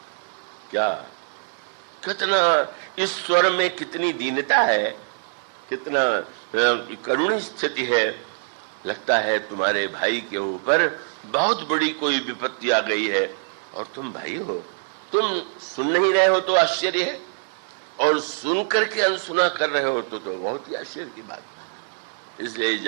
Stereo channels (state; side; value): silent; left; digital silence